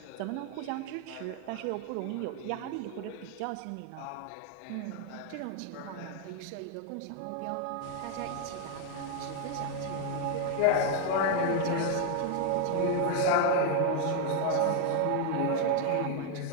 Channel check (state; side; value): different; both; correlation 0.00